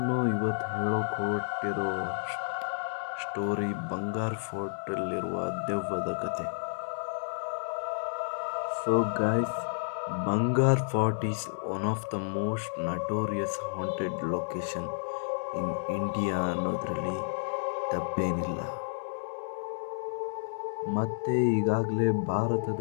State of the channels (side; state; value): right; silent; 57 dB below the other